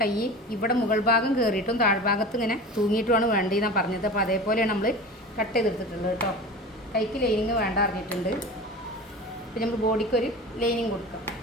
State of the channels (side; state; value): both; normal; correlation 0.33